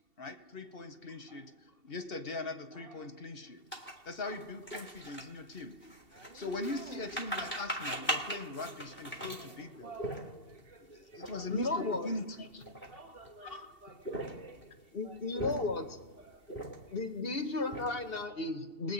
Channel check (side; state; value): right; late; 2.7 ms